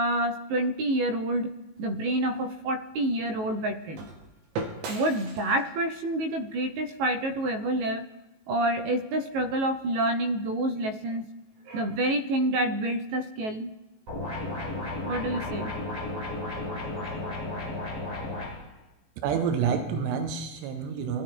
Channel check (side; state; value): left; late; 19 ms